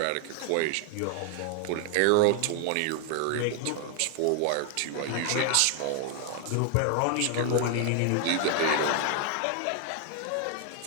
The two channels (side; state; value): both; different; correlation 0.00